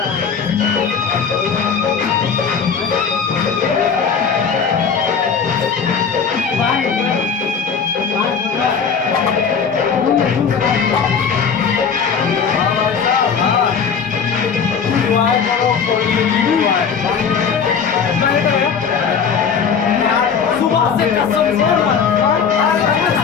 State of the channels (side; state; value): right; quieter; 6.3 dB